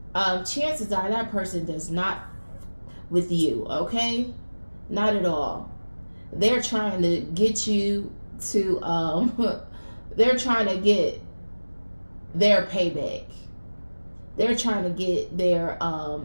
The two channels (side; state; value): both; inverted; correlation -1.00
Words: chances are that person does not with you, okay? Not at all. They're trying to get you to they're trying to get their payback. They're trying to get